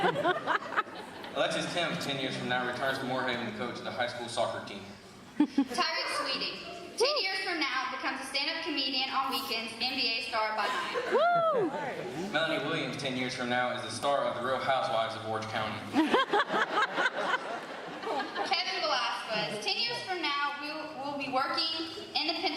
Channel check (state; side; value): identical; both; correlation 1.00